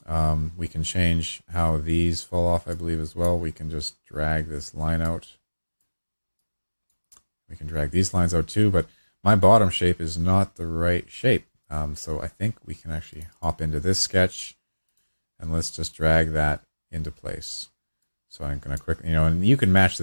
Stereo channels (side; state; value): both; inverted; correlation -1.00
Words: We can change how these fall off, I believe, as well. We can just drag this line out. We can drag these lines out too, but my bottom shape is not the right shape. So I think we can actually hop into this sketch and let's just drag that into place. So I'm going to quickly, and you can match